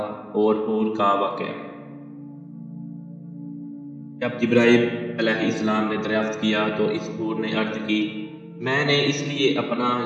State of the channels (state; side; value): identical; both; correlation 1.00